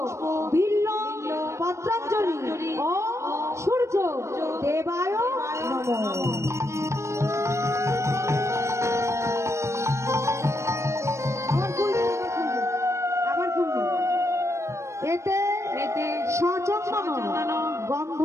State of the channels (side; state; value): left; late; 0.14 ms